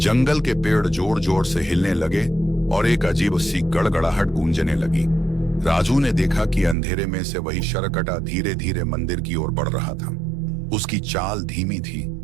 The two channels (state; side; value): drops out; left; at 6.8 s